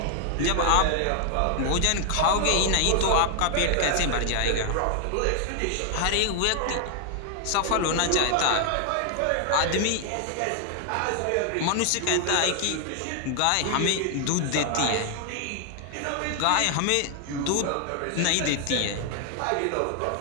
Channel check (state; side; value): different; both; correlation 0.00